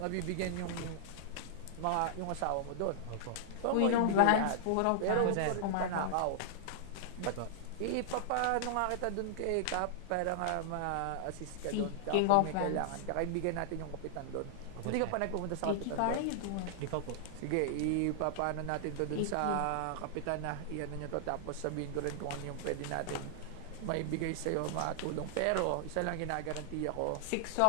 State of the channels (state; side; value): different; both; correlation -0.01